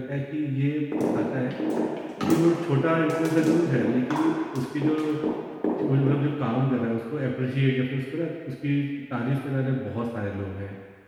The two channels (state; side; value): identical; both; correlation 1.00